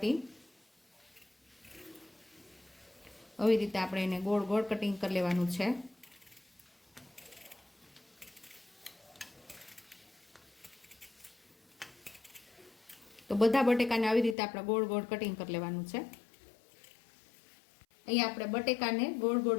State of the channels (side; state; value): right; drops out; at 14.4 s